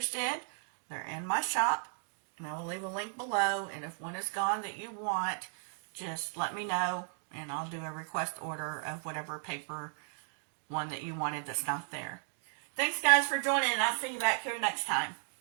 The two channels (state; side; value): silent; left; 54 dB below the other